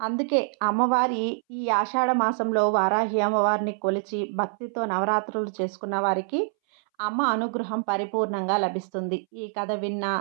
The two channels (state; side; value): silent; left; 61 dB below the other